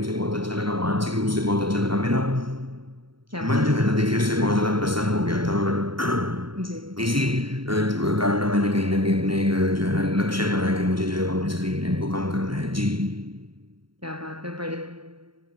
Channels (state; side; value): late; left; 0.73 ms